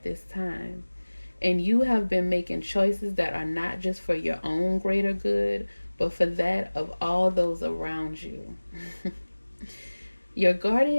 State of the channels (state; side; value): inverted; both; correlation -1.00